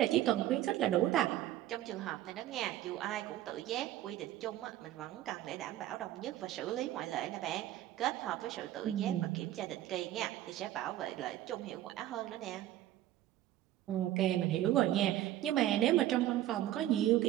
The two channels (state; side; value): quieter; left; 13.6 dB